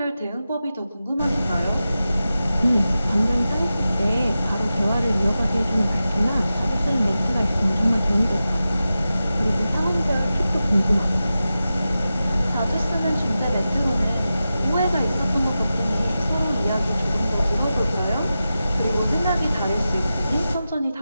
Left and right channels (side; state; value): both; inverted; correlation -0.93